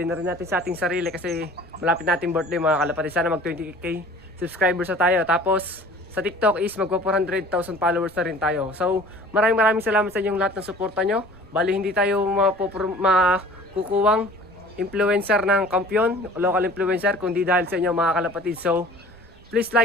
na rin natin sa ating sarili kasi malapit natin birthday mga kalapatids. Sana mag 20k subscribers na tayo. Tapos sa TikTok is magpa 400,000 followers na rin tayo. So maraming salamat sa inyong lahat ng suporta nyo. Bali hindi tayo makukuwang influencer ng kampiyon, local influencer, kundi dahil sa inyo mga kalapatids. So please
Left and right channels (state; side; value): noise; right; rumble, 26 dB below the sound